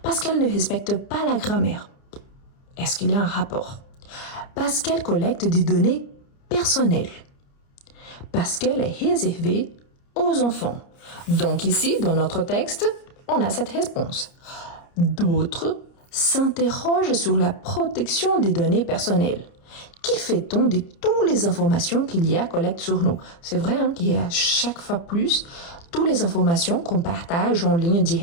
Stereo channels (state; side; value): late; right; 29 ms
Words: Parce qu'elle ne respecte pas la grammaire. Est-ce qu'il y a un rapport? Parce qu'elle collecte des données personnelles. Parce qu'elle est réservée aux enfants. Donc ici, dans notre texte, on a cette réponse. D'autres s'interrogent sur la protection des données personnelles. Qui fait-on de toutes les informations qu'il y a collecte sur nous? C'est vrai qu'il y a chaque fois plus toutes les informations qu'on partage en ligne